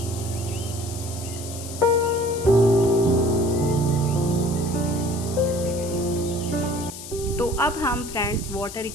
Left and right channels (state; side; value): noise; left; hiss, 12 dB below the sound